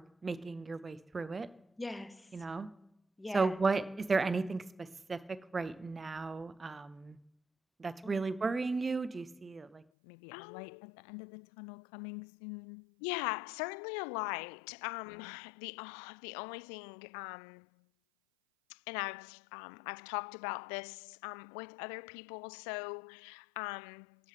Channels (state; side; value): drops out; right; at 9.9 s